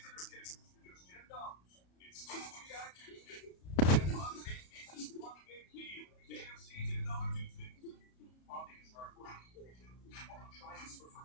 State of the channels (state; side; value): late; right; 33 ms